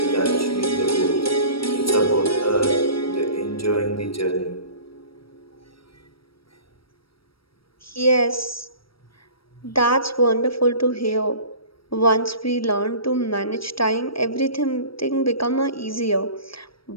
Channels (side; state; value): right; late; 0.75 ms